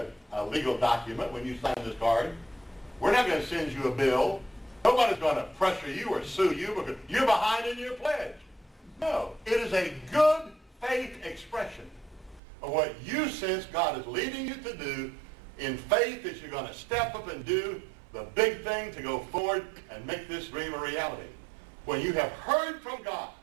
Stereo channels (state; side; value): drops out; left; at 12.4 s